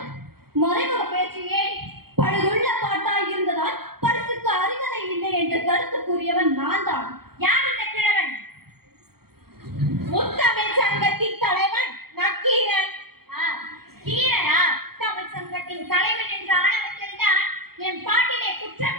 மறைமுக பேச்சியே. பழுதுள்ள பாட்டாய் இருந்ததால் பரிசுக்கு அருகதை இல்லை என்று கருத்து கூறியவன் நான் தான். யார் இந்த கிழவன்? முத்தமிழ் சங்கத்தின் தலைவன் நக்கீரன். கீரனா? தமிழ் சங்கத்தின் தலைவன் என்ற ஆணவத்தில் தான் என் பாட்டிலே குற்றம்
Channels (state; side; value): late; left; 0.94 ms